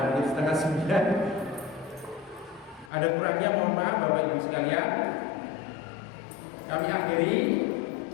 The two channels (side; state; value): right; drops out; at 2.9 s